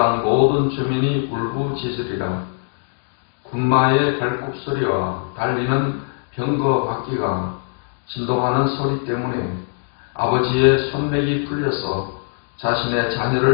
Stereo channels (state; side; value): silent; right; 60 dB below the other